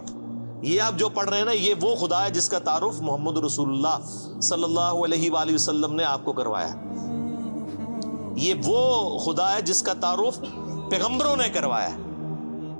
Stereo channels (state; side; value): inverted; both; correlation -1.00